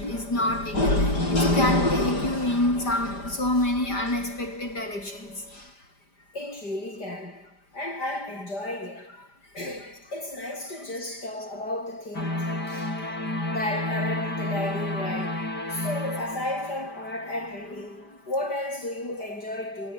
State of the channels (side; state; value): right; late; 5.0 ms